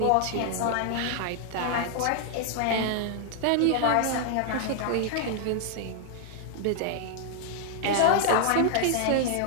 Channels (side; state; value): both; different; correlation 0.00